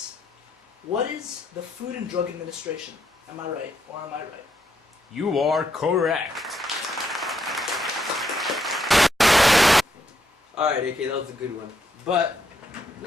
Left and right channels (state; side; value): normal; both; correlation 0.77